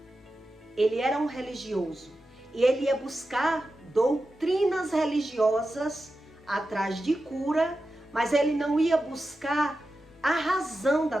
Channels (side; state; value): both; normal; correlation 0.91